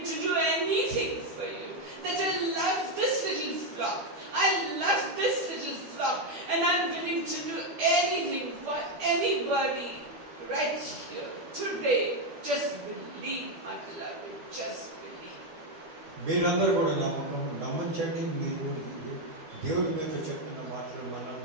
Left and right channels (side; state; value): left; late; 12 ms